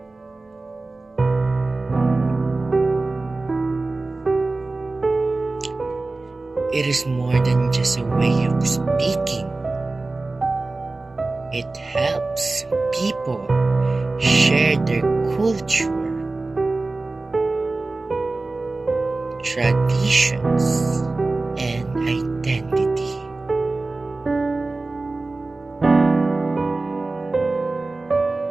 It is more than just a way of speaking. It helps people share their culture, traditions, and identity.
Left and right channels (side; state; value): left; quieter; 3.3 dB